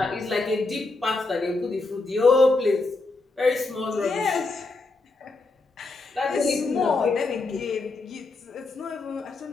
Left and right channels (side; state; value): right; quieter; 3.4 dB